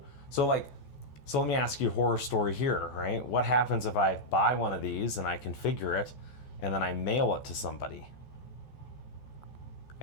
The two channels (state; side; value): late; right; 14 ms